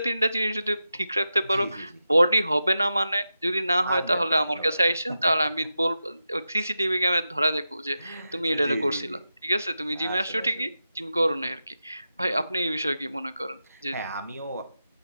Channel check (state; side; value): inverted; both; correlation -0.91